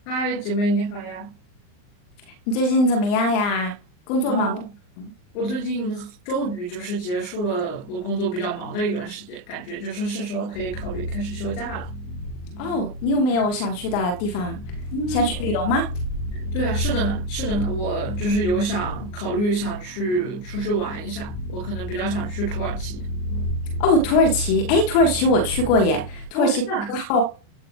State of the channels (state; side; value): late; right; 39 ms